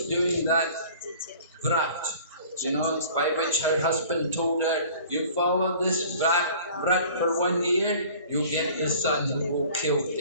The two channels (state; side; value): inverted; both; correlation -0.48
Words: doing that vrat, by which her husband told her, you follow this vrat for 1 year, you'll get the son who will kill